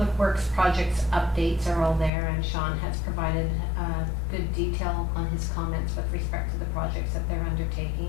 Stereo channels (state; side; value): drops out; right; at 2.1 s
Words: Works projects updates are all there, and Sean has provided good detail on his comments with respect to the projects that they're